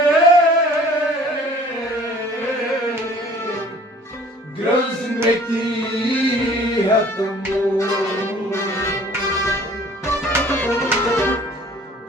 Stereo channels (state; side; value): normal; both; correlation 0.51